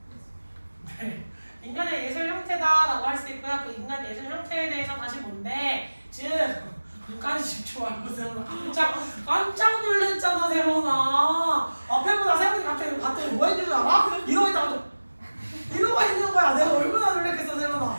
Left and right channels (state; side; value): inverted; both; correlation -1.00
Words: 네. 인간의 예술 형태다라고 할 수 있고요. 그 인간 예술 형태에 대해서 다시 뭔데? 즉, 눈까지 집중하고 세훈아 깜짝 놀랐잖아. 세훈아 앞에 보다 세훈이 갑자기 봤더니 뭐 했는 줄 알아? 이러고 있다가 이러고 있는 거야. 내가 얼마나 놀랬겠어. 세훈아